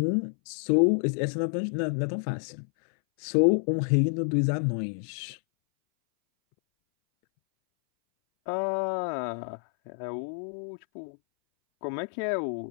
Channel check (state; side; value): silent; right; 59 dB below the other